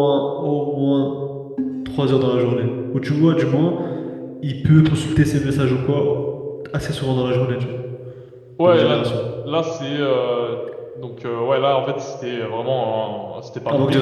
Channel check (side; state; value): both; identical; correlation 1.00